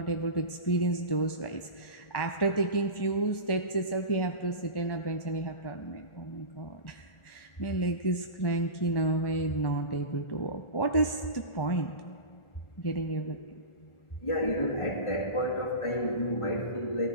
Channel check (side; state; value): right; late; 1.4 ms